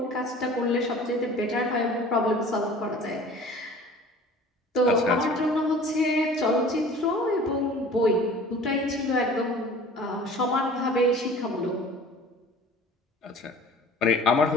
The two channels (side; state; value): both; normal; correlation 0.45